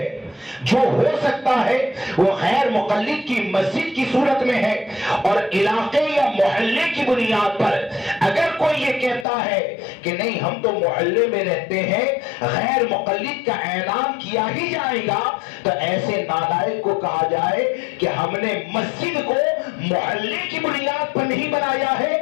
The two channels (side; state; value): right; drops out; at 9.2 s